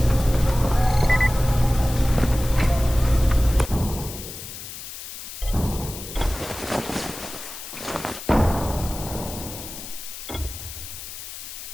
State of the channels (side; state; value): left; noise; hiss, 11 dB below the sound